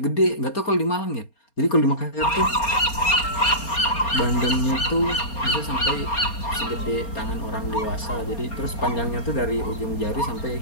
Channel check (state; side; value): late; right; 4.3 ms